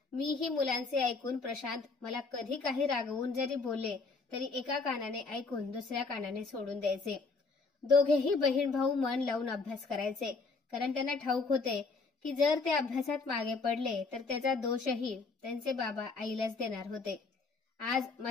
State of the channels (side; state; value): right; quieter; 4.1 dB